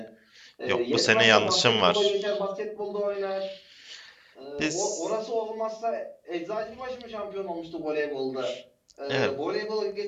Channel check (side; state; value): both; identical; correlation 1.00